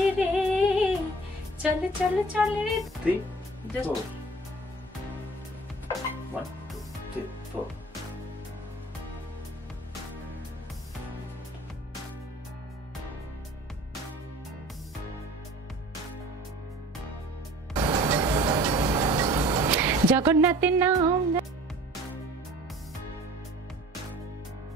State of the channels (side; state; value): both; normal; correlation 0.47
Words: চল চল চল রে। 3, 4. 1, 2, 3, 4. জগন্নাথের নাম